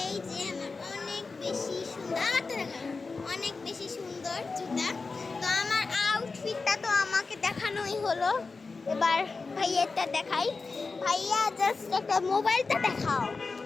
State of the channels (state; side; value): quieter; right; 4.2 dB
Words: এই যে আমার অনেক বেশি সুন্দর, আমারটা দেখো অনেক বেশি সুন্দর জুতা। তো আমার আউটফিটটা তো আমাকে দেখানোই হলো, এবার ভাইয়েরটা দেখাই। ভাইয়া জাস্ট একটা মোবাইলটা দেখাও।